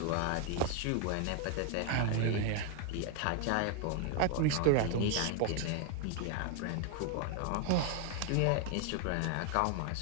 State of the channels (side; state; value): both; different; correlation 0.01